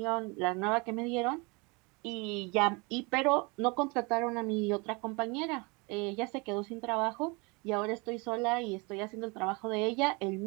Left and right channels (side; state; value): left; quieter; 28.6 dB